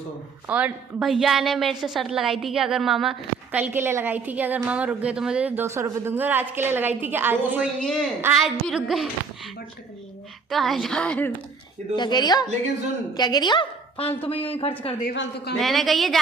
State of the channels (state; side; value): quieter; left; 4.9 dB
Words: और भैया ने मेरे से शर्त लगाई थी कि अगर मामा कल के लिए लगाई थी कि अगर मामा रुक गए तो मुझे 200 रुपये दूंगे, और आज के लिए लगाई थी कि आज 200 ही है। आज भी रुक गए तो 1000। क्या कह रही हो? लेकिन सुन, क्या कह रही हो? फालतू में यूं ही खर्च कर दिए, फालतू का। मैंने कही है